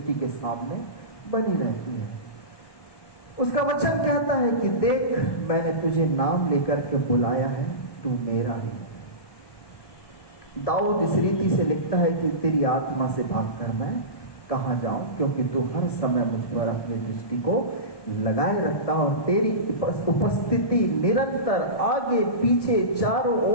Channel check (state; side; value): late; right; 1.2 ms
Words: के सामने बनी रहती है। उसका वचन कहता है कि देख, मैंने तुझे नाम लेकर के बुलाया है, तू मेरा ही। दाऊद इस रीति से लिखता है कि तेरी आत्मा से भागकर मैं कहां जाऊं, क्योंकि तू हर समय मुझ पर अपनी दृष्टि को लगाए रखता और तेरी उपस्थिति निरंतर आगे पीछे चारों